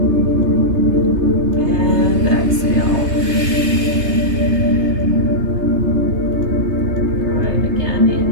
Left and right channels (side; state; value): left; late; 3.3 ms